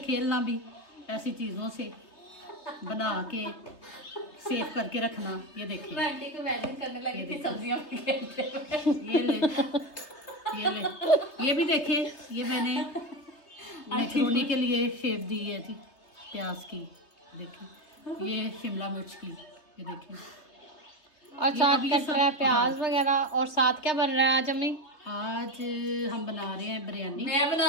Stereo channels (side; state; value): right; late; 3.3 ms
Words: भी, ऐसी चीज़ों से बना के सेव करके रखना। ये देखिए, मैं आंटी को इमेजिन करने लगी थी सब्जियां खेलते ये ले, ये ले, ये भी देखे, ये मैंने मैक्रोनी के लिए शेप दी है थी प्याज की। देखिए, ये शिमला मिर्च की, ये देखिए। और साथ अब ये कट सब- रहा है प्याज वगैरह। और साथ क्या बन रहा है आज अम्मी? आज हम बना रहे हैं बिरयानी। मैं